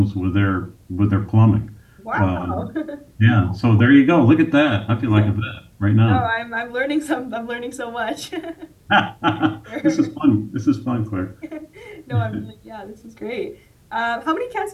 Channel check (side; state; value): both; identical; correlation 1.00